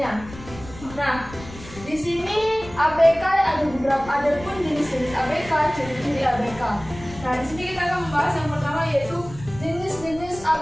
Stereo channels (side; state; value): left; noise; rumble, 16 dB below the sound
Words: Nah, di sini ABK ada pun jenis-jenis ABK, ciri-ciri ABK. Nah, di sini kita akan membahas yang pertama yaitu jenis-jenis